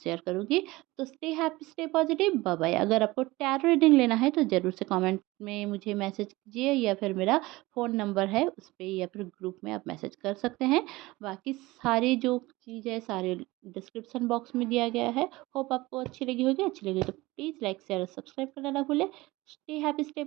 शेयर करूँगी। तो stay happy, stay positive, bye bye. अगर आपको टैरो रीडिंग लेना है तो ज़रूर से कमेंट में मुझे मैसेज कीजिए, या फिर मेरा फ़ोन नंबर है उस पे, या फिर ग्रुप में आप मैसेज कर सकते हैं। बाकी सारी जो चीज़ है सारे डिस्क्रिप्शन बॉक्स में दिया गया है। होप आपको अच्छी लगी होगी, अच्छी लगी तो प्लीज़ लाइक शेयर और सब्सक्राइब करना ना भूलें। Stay happy, stay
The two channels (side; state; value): left; quieter; 20.3 dB